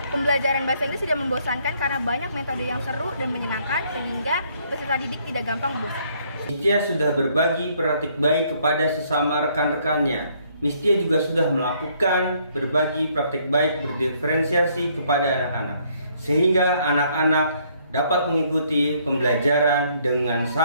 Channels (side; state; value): both; inverted; correlation -0.67